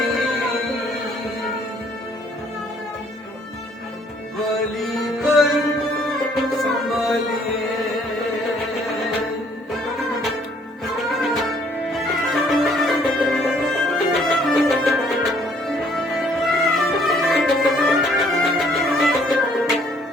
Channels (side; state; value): both; normal; correlation 0.62